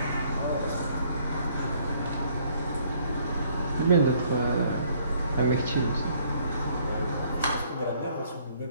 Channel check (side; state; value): both; inverted; correlation -0.63